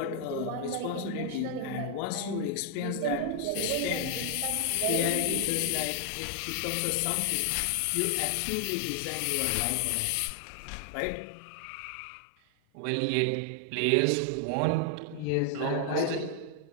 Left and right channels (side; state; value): both; different; correlation 0.00